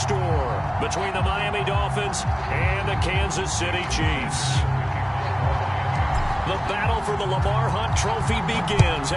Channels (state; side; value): identical; both; correlation 1.00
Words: between the Miami Dolphins and the Kansas City Chiefs. The battle for the Lamar Hunt Trophy begins